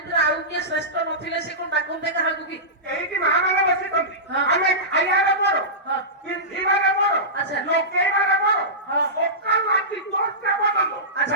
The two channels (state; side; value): normal; both; correlation -0.18